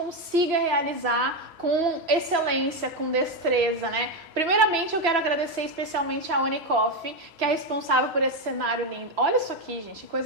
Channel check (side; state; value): left; late; 3.0 ms